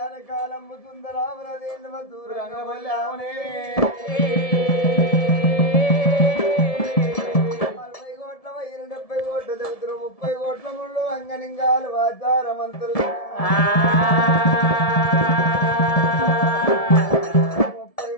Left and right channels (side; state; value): right; late; 1.7 ms